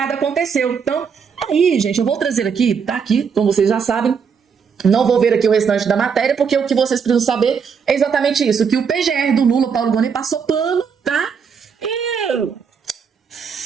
aconteceu. Então, aí, gente, eu vou trazer aqui, tá aqui, como vocês já sabem. Não vou ver aqui o restante da matéria, porque o que vocês precisam saber é exatamente isso, que o PGR do Lula, Paulo Gonet, passou pano, tá? E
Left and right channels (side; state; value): left; quieter; 6.4 dB